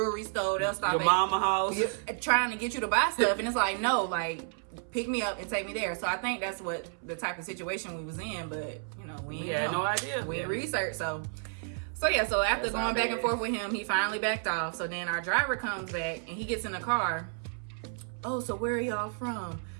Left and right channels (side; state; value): left; silent; 57 dB below the other